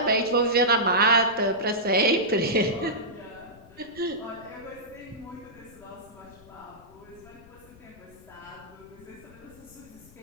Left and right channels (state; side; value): noise; left; rumble, 23 dB below the sound